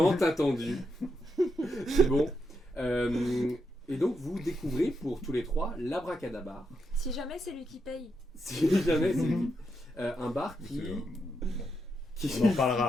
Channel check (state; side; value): normal; both; correlation 0.82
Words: attendu. C'est bon. Et donc vous découvrez pour tous les 3 l'Abracadabar. Si jamais c'est lui qui paye. Si jamais c'est lui. Un bar qui On en